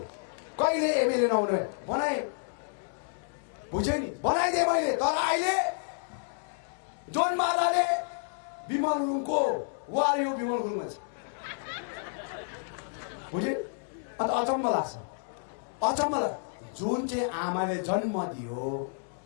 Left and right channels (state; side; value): silent; right; digital silence